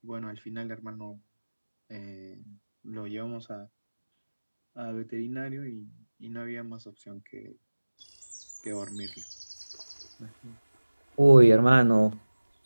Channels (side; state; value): both; inverted; correlation -1.00